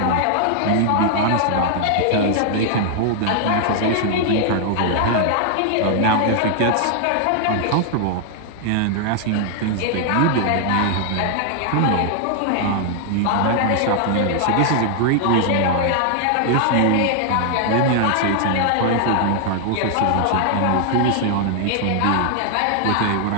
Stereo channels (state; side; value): different; both; correlation 0.00